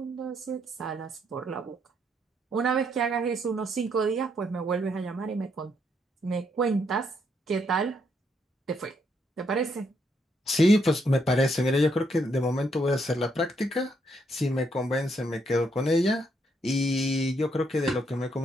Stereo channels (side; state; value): both; normal; correlation 0.74